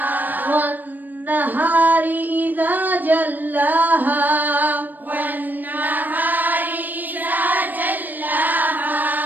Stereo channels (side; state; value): left; late; 0.088 ms